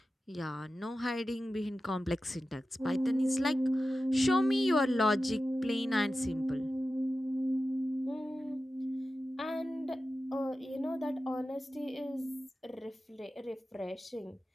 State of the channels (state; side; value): normal; both; correlation 0.93